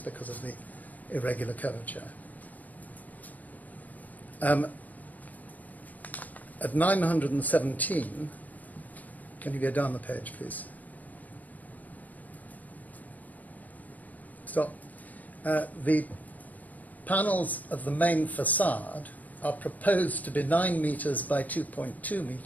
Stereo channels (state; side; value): late; right; 0.078 ms